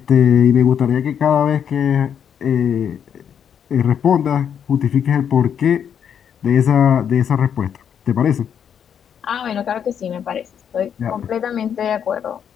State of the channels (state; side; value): quieter; right; 8.3 dB